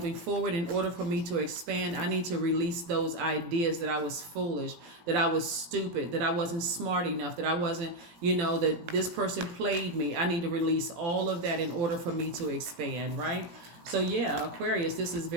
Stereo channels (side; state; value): left; late; 18 ms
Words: forward, in order for me to expand, I need to release those ideas that I was foolish, that I was stupid, that I wasn't smart enough, that I wasn't, that this person played me. I need to release all of that in order for me to expand, right? So yeah, Aquarius, this is